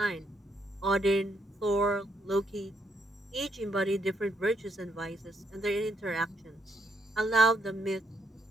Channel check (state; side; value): normal; both; correlation 0.75